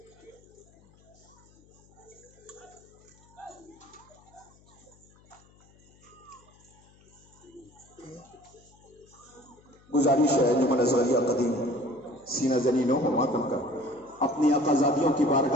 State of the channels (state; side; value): noise; left; hum, 28 dB below the sound